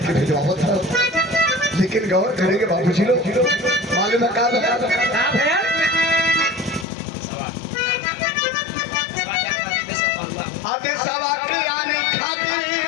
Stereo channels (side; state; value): right; drops out; at 6.9 s